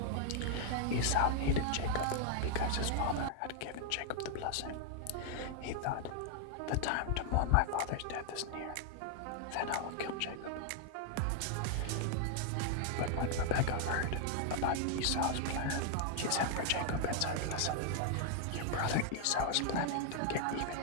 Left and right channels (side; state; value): both; different; correlation 0.00